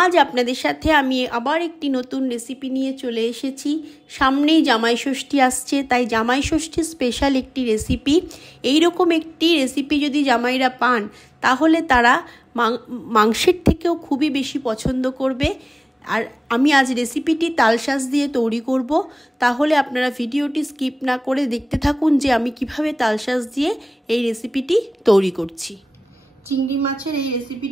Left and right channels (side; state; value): both; normal; correlation 0.98